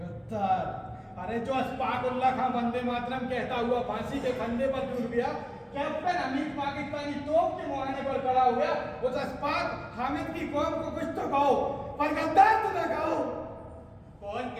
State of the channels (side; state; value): both; identical; correlation 1.00